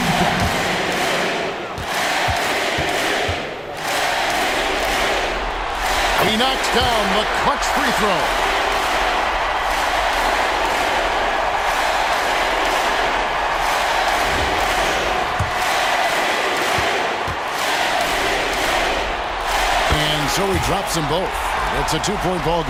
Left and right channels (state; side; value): identical; both; correlation 1.00